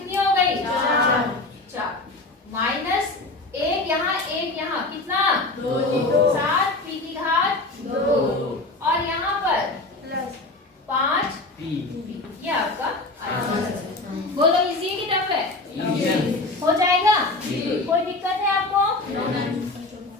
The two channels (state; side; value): quieter; right; 3.1 dB